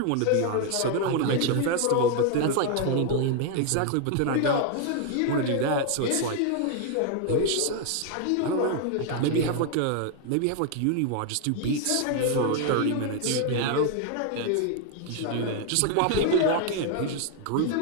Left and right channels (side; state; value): both; different; correlation 0.00